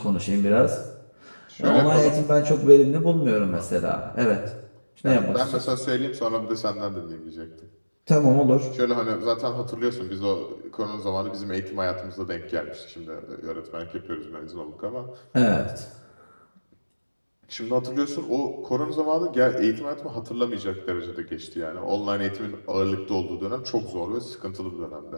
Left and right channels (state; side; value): inverted; both; correlation -1.00